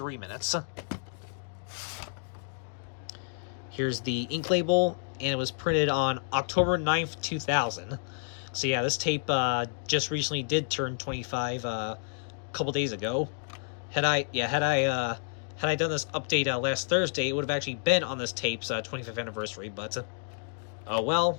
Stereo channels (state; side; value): silent; right; digital silence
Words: minutes. Here's the ink label, and it was printed on October 9th, 2000. So yeah, this tape just recently did turn 25 a couple days ago. Had I done this update last Thursday, it would have actually been on this tape's 25th anniversary. But oh well,